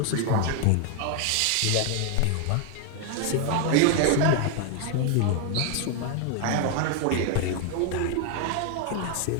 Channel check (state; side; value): different; both; correlation 0.00